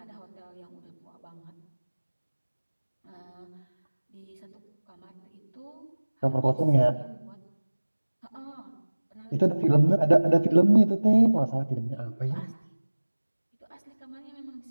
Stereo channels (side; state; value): both; inverted; correlation -1.00